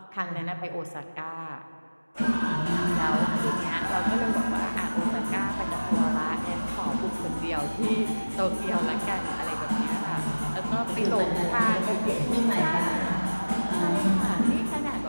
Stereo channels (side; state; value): both; inverted; correlation -1.00